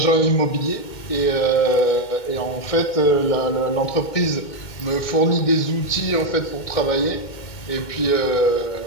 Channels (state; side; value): late; right; 2.2 ms